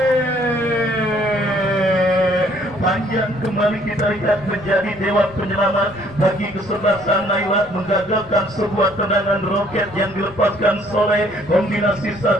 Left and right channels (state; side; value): noise; left; rumble, 25 dB below the sound